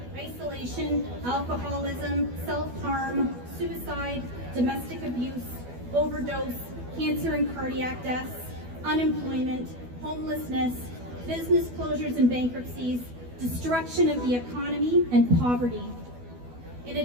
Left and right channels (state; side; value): late; left; 12 ms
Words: isolation, alcoholism, self-harm, suicide, domestic abuse, overdose, cancer and cardiac deaths, unemployment, homelessness, business closures and bankruptcies, destruction of the economy, and poverty. In